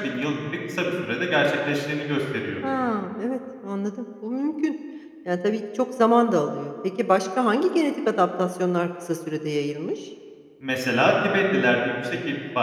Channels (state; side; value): identical; both; correlation 1.00